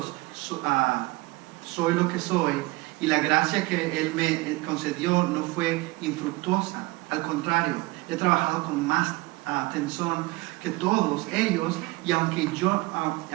soy lo que soy, y la gracia que Él me concedió no fue infructuosa. Al contrario, he trabajado con más atención que todos ellos, y aunque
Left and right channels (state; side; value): quieter; left; 22.6 dB